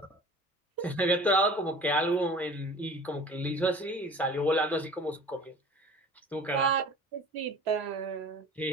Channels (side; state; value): both; normal; correlation 0.42